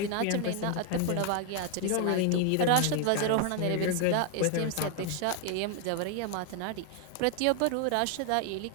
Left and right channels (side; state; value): both; different; correlation 0.00